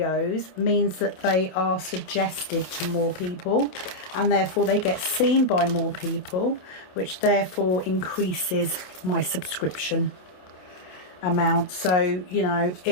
means that they are suggested to more people, and therefore they get seen by more people, which therefore increases my subscription amount. So, you know,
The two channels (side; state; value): right; late; 27 ms